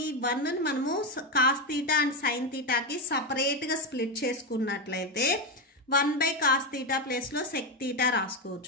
ఈ 1 ని మనము cos theta and sin theta కి సపరేట్ గా స్ప్లిట్ చేసుకున్నట్లయితే 1 by cos theta ప్లేస్ లో sec theta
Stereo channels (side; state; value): both; normal; correlation 0.10